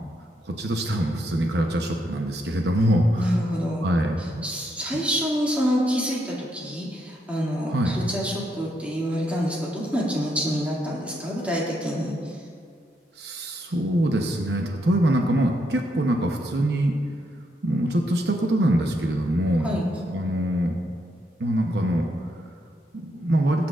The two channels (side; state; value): both; normal; correlation 0.78